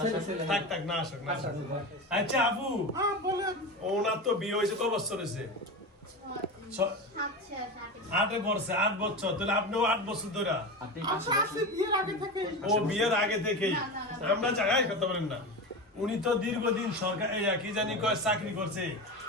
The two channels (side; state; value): both; normal; correlation 0.24